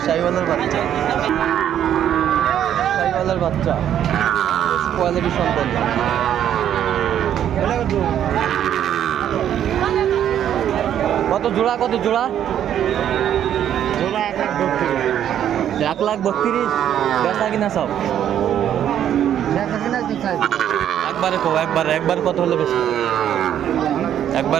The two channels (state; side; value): quieter; left; 10.2 dB